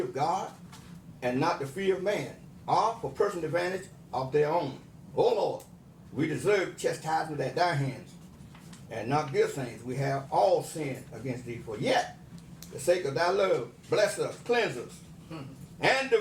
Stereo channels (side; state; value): both; identical; correlation 1.00